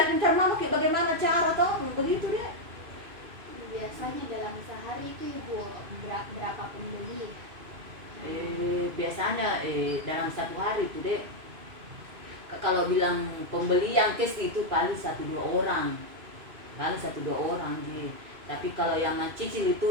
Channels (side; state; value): left; late; 2.5 ms